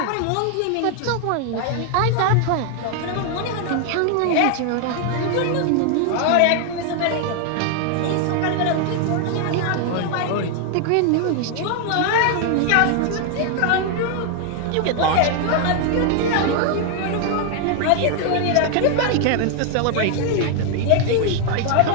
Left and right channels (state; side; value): different; both; correlation 0.00